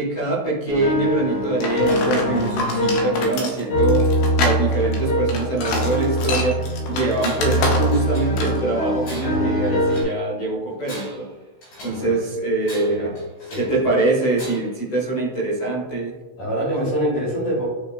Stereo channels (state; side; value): late; right; 16 ms